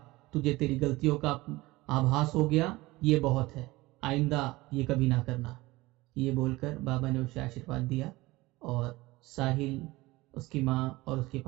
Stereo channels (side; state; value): left; quieter; 20.1 dB